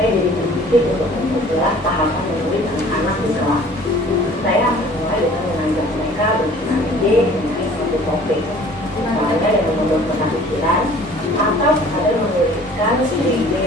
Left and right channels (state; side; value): normal; both; correlation 0.50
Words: jadi berpikir untuk memperjelas tahapan